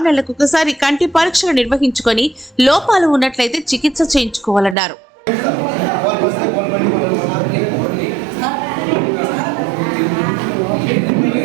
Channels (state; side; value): drops out; left; at 4.8 s